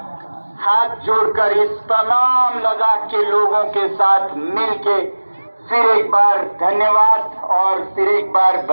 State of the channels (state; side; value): inverted; both; correlation -1.00